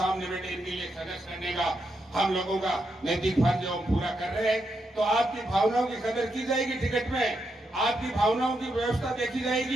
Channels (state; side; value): normal; both; correlation 0.82